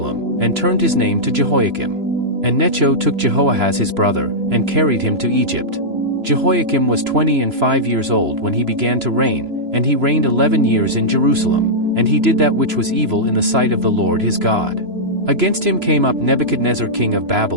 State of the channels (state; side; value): late; left; 3.0 ms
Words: and turned his name to Jehoiakim. And Necho took Jehoahaz his brother, and carried him to Egypt. Jehoiakim was 25 years old when he began to reign, and he reigned 11 years in Jerusalem, and he did that which was evil in the sight of the Lord his God. Against him came up Nebuchadnezzar king of